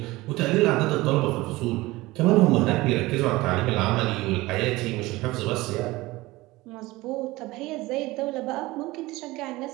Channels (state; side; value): quieter; left; 19.9 dB